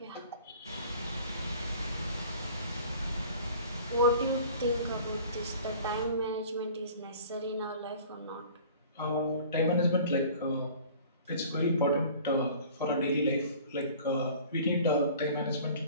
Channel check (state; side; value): inverted; both; correlation -0.47